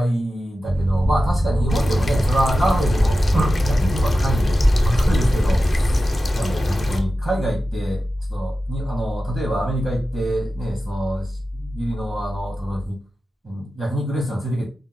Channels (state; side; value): normal; both; correlation 0.93